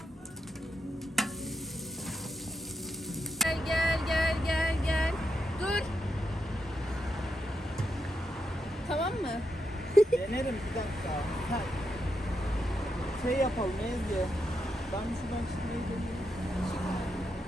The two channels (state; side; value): normal; both; correlation 0.83